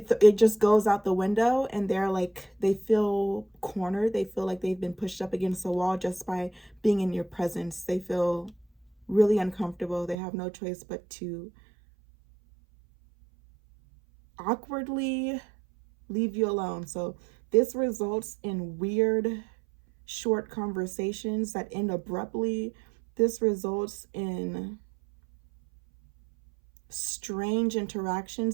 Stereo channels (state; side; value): drops out; left; at 10.2 s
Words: just goes out the window, and they're like, they feel cornered. They feel like they've been pushed up against a wall just by being in your presence. They feel really uncomfortable. They have no choice but to awkwardly leave you alone. So this results in weird, short conversations that end abruptly. This results in strange